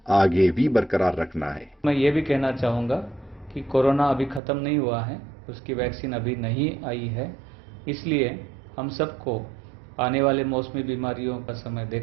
आगे भी बरकरार रखना है। मैं ये भी कहना चाहूँगा कि कोरोना अभी खत्म नहीं हुआ है, उसकी वैक्सीन अभी नहीं आई है। इसलिए हम सबको आने वाले मौसमी बीमारियों का समय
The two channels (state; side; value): drops out; left; at 4.4 s